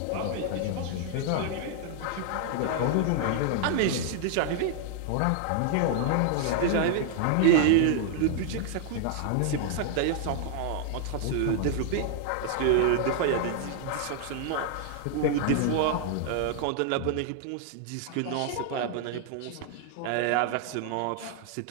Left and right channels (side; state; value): both; different; correlation 0.00